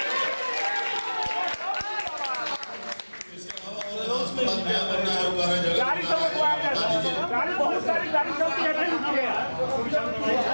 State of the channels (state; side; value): inverted; both; correlation -1.00